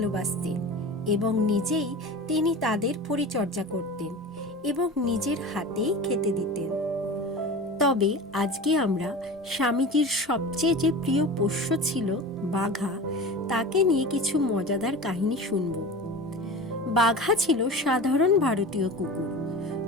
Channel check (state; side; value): normal; both; correlation 0.32